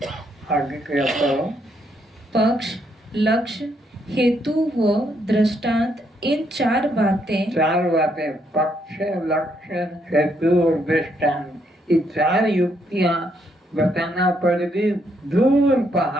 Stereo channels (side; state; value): both; normal; correlation 0.74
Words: आगे क्या करो? पक्ष, लक्ष्य, हेतु व दृष्टांत, इन 4 बातें पक्ष, लक्ष्य, हेतु और दृष्टांत, ये 4 युक्तियां बताना पड़ेगी। दूर